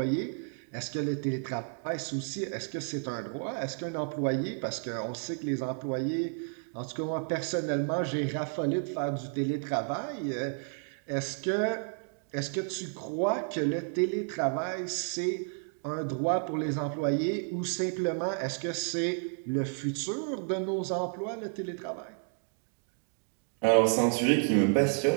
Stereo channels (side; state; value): left; silent; 57 dB below the other